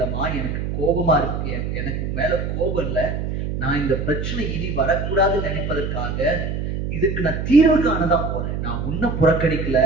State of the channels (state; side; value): noise; right; hum, 3 dB below the sound